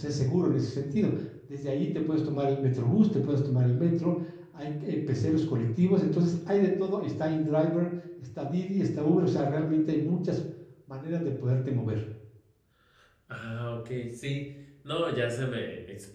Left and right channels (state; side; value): identical; both; correlation 1.00